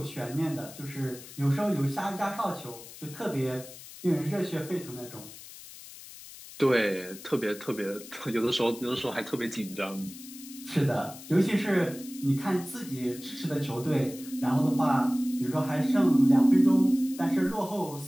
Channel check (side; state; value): left; noise; hiss, 16 dB below the sound